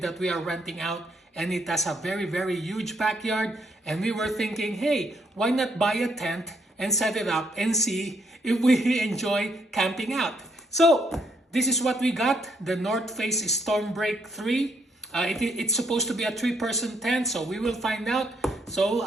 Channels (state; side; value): normal; both; correlation 0.73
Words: we are renting out, and it has a very huge backyard, and we were thinking, hey, why not buy a tent and set it up and see if we enjoy camping out. So this is what we got, the North Face Stormbreak 3. It's supposed to be a 3-person tent, so we will find out. So